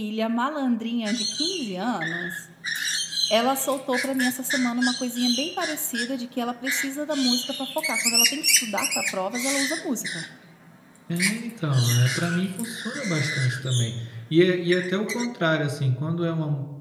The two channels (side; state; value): both; identical; correlation 1.00